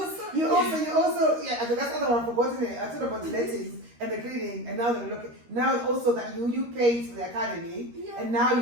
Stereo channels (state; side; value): late; left; 13 ms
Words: you also, yeah, that's another one forgotten it. I talked about the lettings and the cleaning, and now they're looking. Now also that you paid for the academy, and now